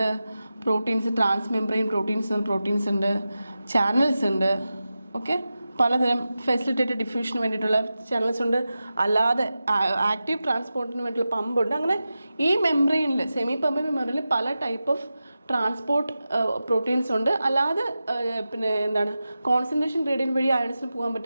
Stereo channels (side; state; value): both; inverted; correlation -0.93